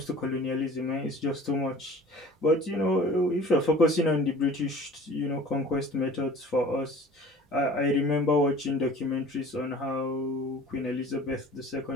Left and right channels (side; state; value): both; normal; correlation 0.45